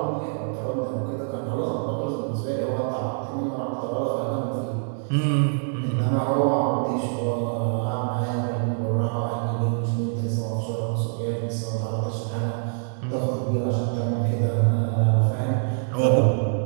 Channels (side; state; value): left; silent; digital silence